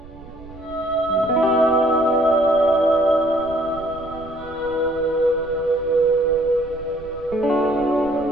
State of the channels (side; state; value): right; noise; rumble, 19 dB below the sound